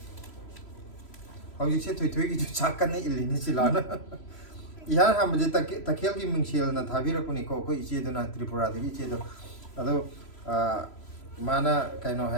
Hau jik se thui ki jo chakkan ni ilini silana. Ihan ham je takhel ki mingsil na thabira kuni ko iche do na Tripura de iche do. Ado mana kaino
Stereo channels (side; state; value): right; late; 3.0 ms